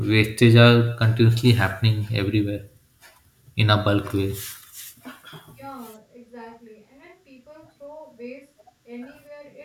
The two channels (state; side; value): identical; both; correlation 1.00